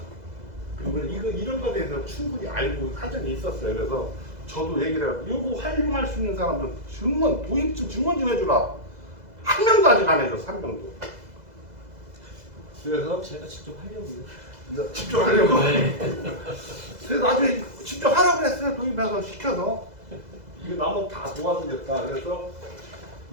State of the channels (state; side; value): late; left; 2.0 ms